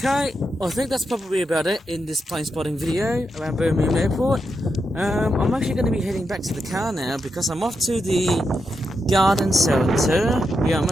I think that's probably about it in this plane spotting video around Birmingham Airport. I'm actually going to be heading back to the car now because I'm off to the garden centre. Yeah, I'm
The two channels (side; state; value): both; normal; correlation 0.85